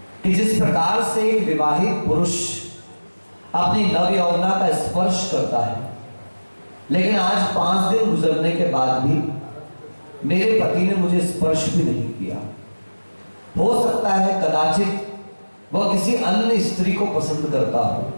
कि जिस प्रकार से एक विवाहित पुरुष अपनी नव यौवना का स्पर्श करता है, लेकिन आज 5 दिन गुजरने के बाद भी मेरे पति ने मुझे स्पर्श भी नहीं किया। हो सकता है कदाचित वह किसी अन्य स्त्री को पसंद करता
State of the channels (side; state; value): both; inverted; correlation -1.00